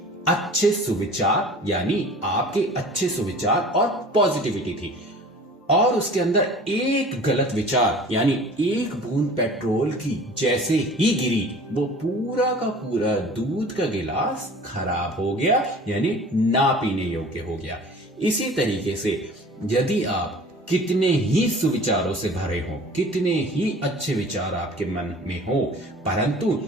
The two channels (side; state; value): both; normal; correlation 0.44